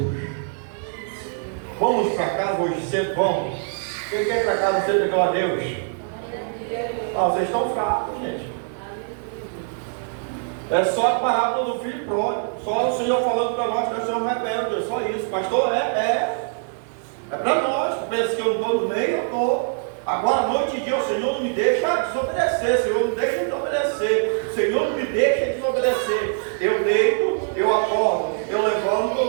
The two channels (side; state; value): left; silent; digital silence